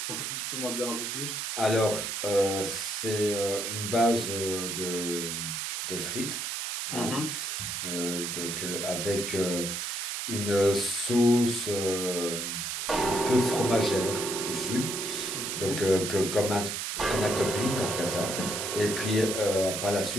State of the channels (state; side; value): noise; right; hiss, 3 dB below the sound